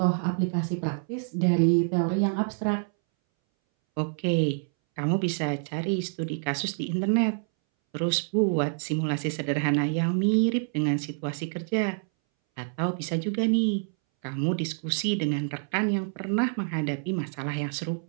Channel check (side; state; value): left; silent; 60 dB below the other